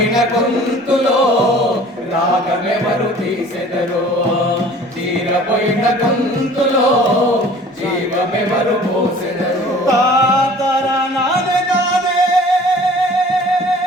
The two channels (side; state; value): both; normal; correlation 0.48